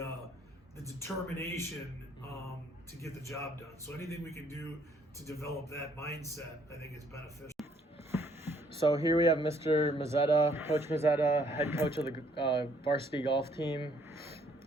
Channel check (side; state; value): both; normal; correlation 0.65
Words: determination to get the job done. So anything we can do to develop that mindset, I think is beneficial. So here we have Mr. Mazzetta, Coach Mazzetta, head coach of the varsity golf team,